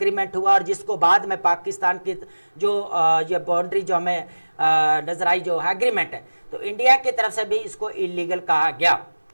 हुआ, और जिसको बाद में पाकिस्तान की जो ये बाउंड्री जो हमें नजर आई जो एग्रीमेंट है, तो इंडिया की तरफ से भी इसको इलीगल कहा गया।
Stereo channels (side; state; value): both; inverted; correlation -1.00